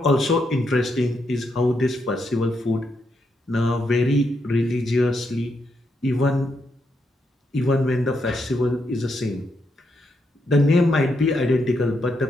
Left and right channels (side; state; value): both; normal; correlation 0.80